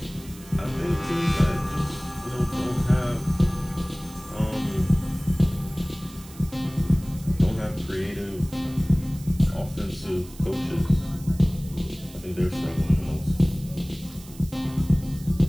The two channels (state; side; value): noise; right; hiss, 20 dB below the sound